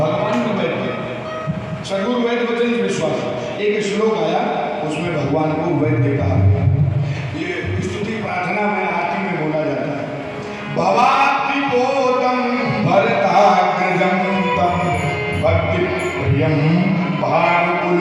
भी वैद्य। सदगुरु वैद्य वचन विश्वास, एक श्लोक आया उसमें भगवान को वैद्य कहा। ये स्तुति प्रार्थना में आरती में बोला जाता है। भवाति बोधम भरताग्रजम तम भक्ति प्रियम भानुकुल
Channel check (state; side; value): identical; both; correlation 1.00